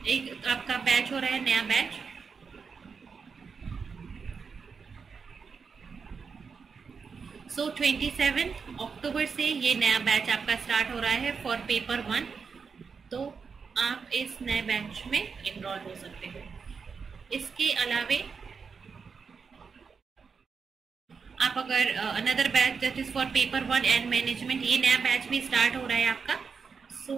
एक आपका बैच हो रहा है, नया बैच, सो 27 अक्टूबर से ये नया बैच आपका स्टार्ट हो रहा है फॉर पेपर 1। तो आप इस नए बैच में इनरोल हो सकते हो। इसके अलावे आप अगर another batch that is for paper 1 and management, ये नया बैच भी स्टार्ट हो रहा है आपका, सो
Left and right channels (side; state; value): left; quieter; 5.6 dB